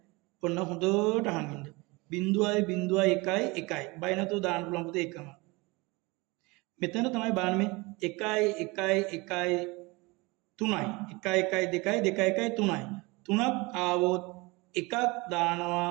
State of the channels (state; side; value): quieter; left; 24.9 dB